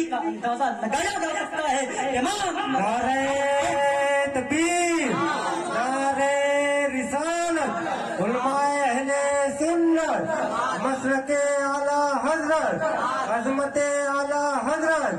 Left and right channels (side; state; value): both; identical; correlation 1.00